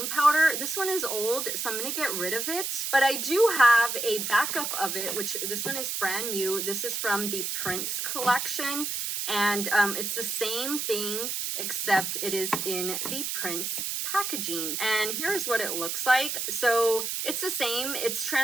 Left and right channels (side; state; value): right; noise; hiss, 2 dB below the sound